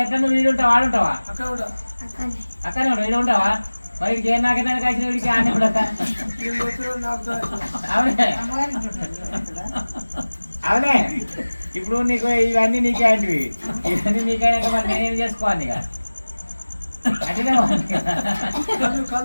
ఎట్లా నువ్వు వీడు ఉంటావా ఆడుంటావా అక్కడనే అక్కడే ఉంటావు వీడు ఉంటావా మరి వీడికి ఏం నాకేదానికి వచ్చిన వీడికి ఆనే కూడా అవునే అవునే ఇప్పుడు నీకు ఇవన్నీ నీకే అంటివి ఇవన్నీ నీకైనాక మరి నేనేం చేసుకోవాలి ఇక అట్లనే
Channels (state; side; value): inverted; both; correlation -1.00